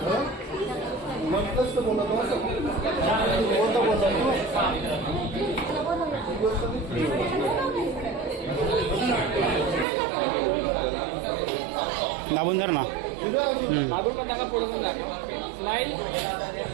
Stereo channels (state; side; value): drops out; left; at 9.9 s